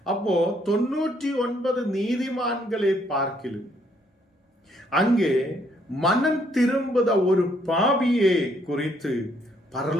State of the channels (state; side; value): normal; both; correlation 0.69